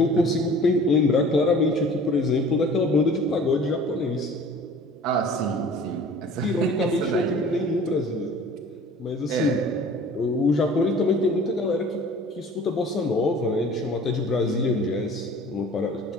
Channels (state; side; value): normal; both; correlation 0.47